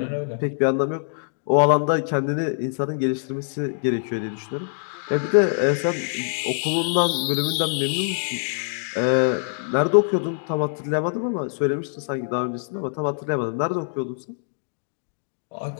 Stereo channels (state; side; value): silent; right; 61 dB below the other